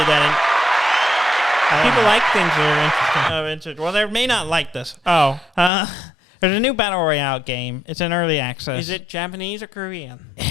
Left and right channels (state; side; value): drops out; right; at 5.7 s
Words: that... People like things that are interesting. Well, they may not like this. Oh. There's a new Battle Royale game. It's in early access. Is it Japanese or Korean?